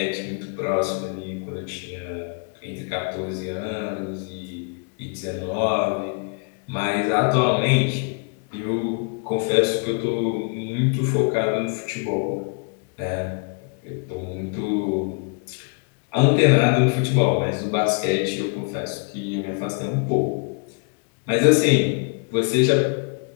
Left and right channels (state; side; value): quieter; right; 38.6 dB